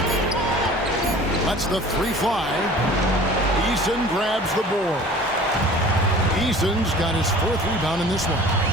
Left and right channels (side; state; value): both; normal; correlation 0.45